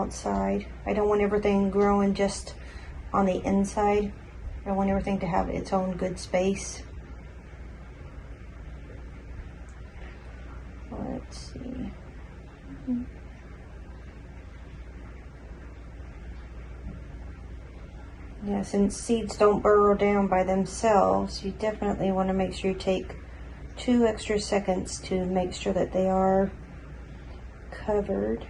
I don't want everything growing just on the inside. I want everything to have its own good space. Let's see. Yeah, since seeds don't burrow down by themselves, you definitely want to make sure you take 2 extra seconds to make sure that they are covered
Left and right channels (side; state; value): both; identical; correlation 1.00